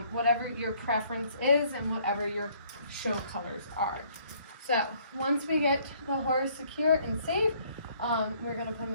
whatever your preference is and whatever your show colors are. So once we get the horse secure and safe, we're going to put them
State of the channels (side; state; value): both; inverted; correlation -0.62